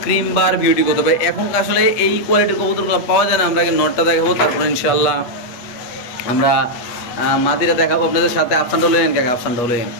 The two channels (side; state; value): right; late; 8.3 ms